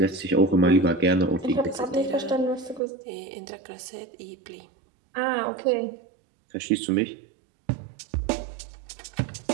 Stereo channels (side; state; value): left; drops out; at 2.8 s